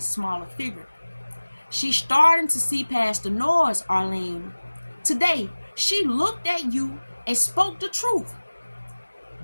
smaller figure. She's starting to see past the noise, Arlene. Today, she looked at you and spoke the truth.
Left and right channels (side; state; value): both; inverted; correlation -1.00